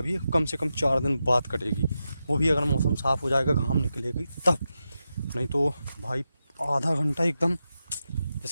कम से कम 4 दिन बाद कटेगी, वो भी अगर मौसम साफ़ हो जाएगा, घाम निकलेगी तब। नहीं तो भाई आधा घंटा एकदम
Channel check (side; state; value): both; inverted; correlation -0.89